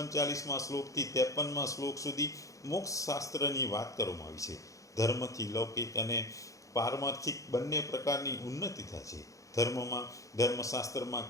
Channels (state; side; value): late; right; 0.16 ms